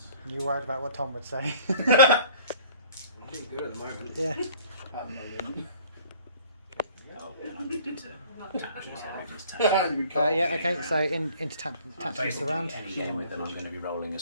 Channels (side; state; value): both; inverted; correlation -0.52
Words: You worried about what Tom would say? I'm doing good at the moment. Yeah. Oh, then I need to tactics. Yeah, okay, so into tactics of the Basically, round. any game with them, I'm going to be rolling